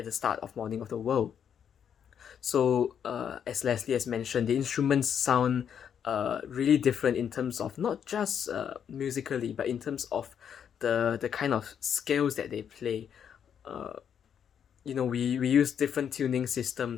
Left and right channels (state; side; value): quieter; right; 8.2 dB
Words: the start of Morning of the World? So as Leslie has mentioned, the instruments sound really different in terms of not just musically, but in terms of the kind of scales that they play. We use different tuning